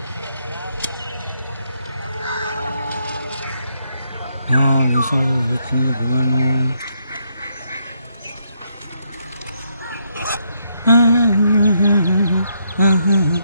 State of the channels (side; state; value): both; inverted; correlation -0.76